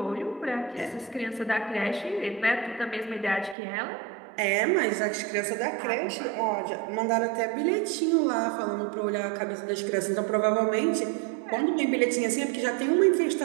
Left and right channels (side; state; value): left; drops out; at 3.6 s